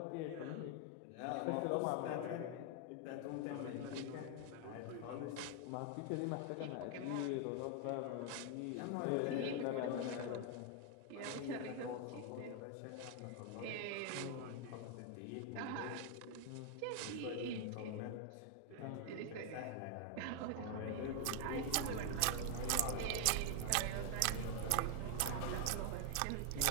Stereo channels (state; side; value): different; both; correlation 0.00